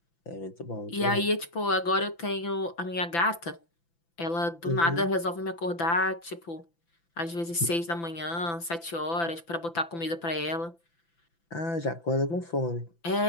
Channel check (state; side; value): late; right; 5.9 ms